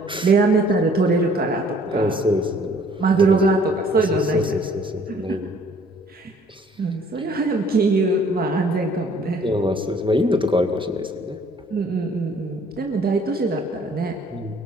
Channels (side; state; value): both; normal; correlation 0.58